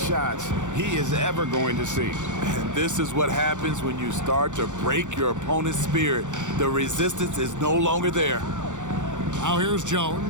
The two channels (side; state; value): left; late; 0.85 ms